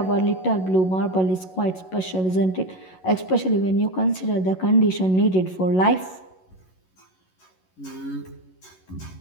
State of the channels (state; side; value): late; right; 11 ms